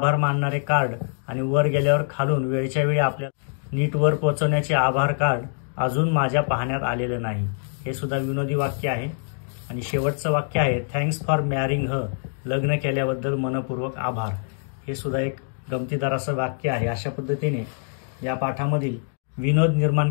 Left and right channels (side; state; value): right; silent; 62 dB below the other